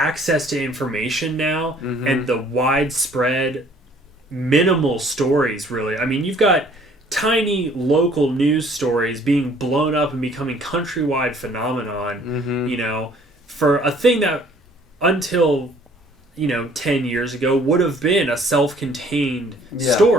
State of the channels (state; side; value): normal; both; correlation 0.57